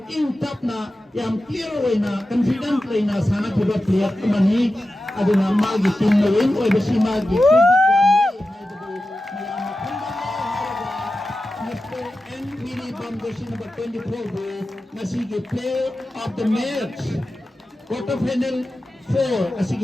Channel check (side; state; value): both; normal; correlation 0.93